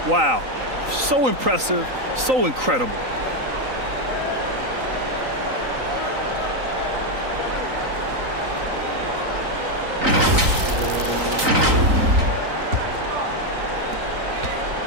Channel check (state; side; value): late; left; 3.9 ms